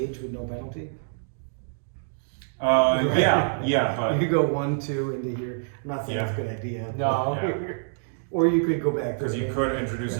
with no penalty. Yeah, You but could go 1, 2 into here. I'm not saying Yeah. it's a good idea. No. Yeah. Or you could go back. because you could introduce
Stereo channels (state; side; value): silent; left; digital silence